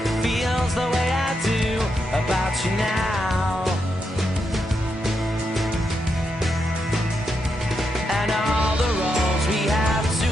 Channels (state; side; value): normal; both; correlation 0.83